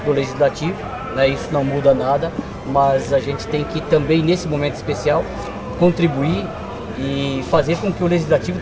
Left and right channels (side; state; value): both; identical; correlation 1.00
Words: do legislativo, né? Isso não muda nada, mas a gente tem que também, nesse momento especial, contribuir e fazer com que o legislativo